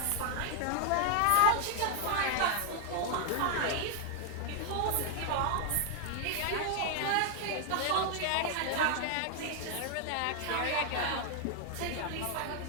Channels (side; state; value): both; different; correlation 0.00